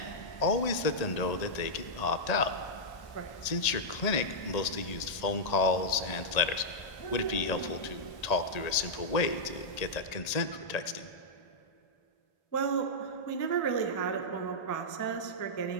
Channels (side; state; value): right; late; 1.8 ms